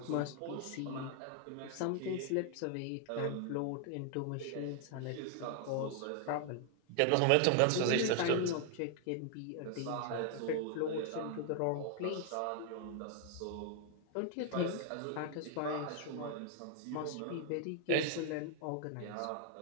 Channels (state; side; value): different; both; correlation 0.00